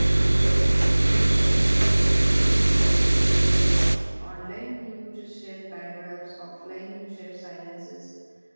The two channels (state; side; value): inverted; both; correlation -1.00